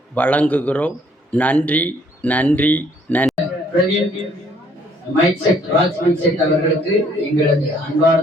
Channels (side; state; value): both; normal; correlation 0.63